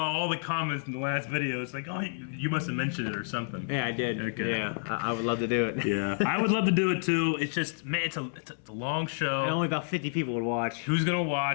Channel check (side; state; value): right; silent; 58 dB below the other